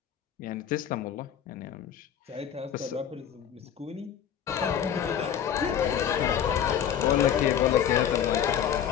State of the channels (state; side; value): quieter; right; 9.3 dB